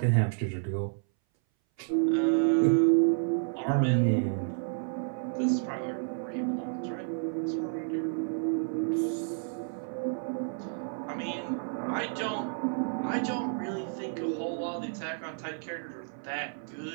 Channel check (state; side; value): silent; left; 57 dB below the other